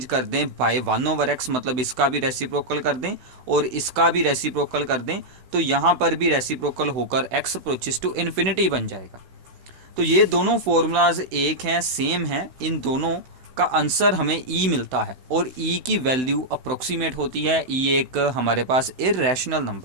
कर दें बाय 1 ओवर एक्स, मतलब इसका भी रेसिप्रोकल कर दें और इसका भी रेसिप्रोकल कर दें, तो यहाँ पर भी रेसिप्रोकल होकर x अप्रोचेस टू इन्फिनिटी बन जाएगा। तो ये दोनों फॉर्मूलाज एक हैं, सेम हैं, इन दोनों का आंसर हमें e मिलता है और e की वैल्यू अप्रोक्सीमेट होती है। e एक हमारे पास इर्रेशनल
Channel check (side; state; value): left; late; 16 ms